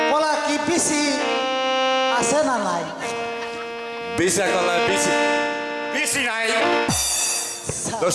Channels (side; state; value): both; identical; correlation 1.00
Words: কলা কি বিসি আছে না নাই? বিচা কলা, বিচি বিচি নাই,